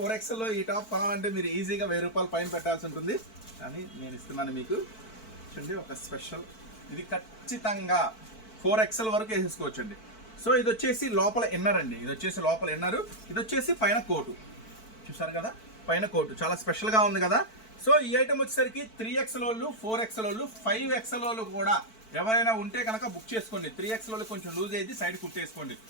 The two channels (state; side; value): late; right; 4.5 ms